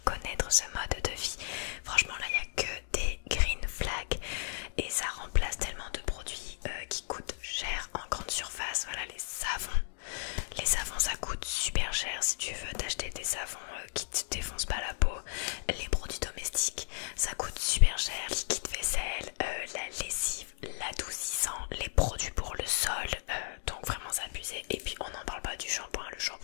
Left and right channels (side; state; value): right; silent; digital silence